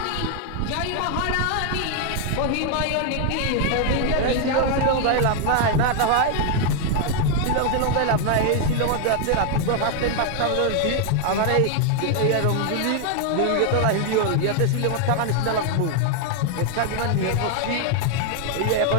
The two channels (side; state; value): both; different; correlation 0.00